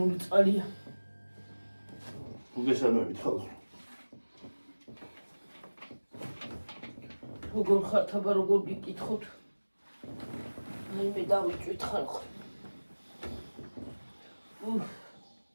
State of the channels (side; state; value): both; inverted; correlation -1.00